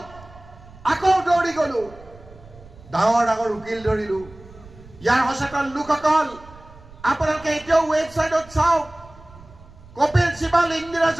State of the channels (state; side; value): noise; right; rumble, 22 dB below the sound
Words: আকৌ দৌৰি গলো, ডাঙৰ ডাঙৰ উকিল ধৰিলো। ইয়াৰ সচেতন লোকসকল আপোনালোকে এতিয়াও ৱেবছাইটত চাওক, কপিল সিবাল, ইন্দিৰা